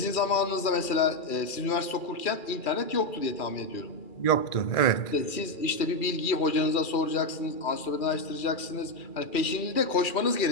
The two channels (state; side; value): late; right; 2.4 ms